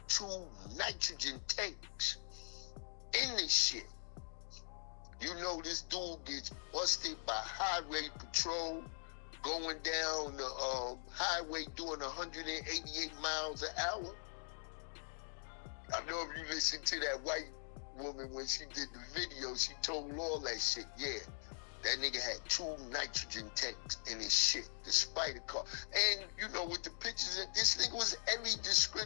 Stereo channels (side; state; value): right; silent; digital silence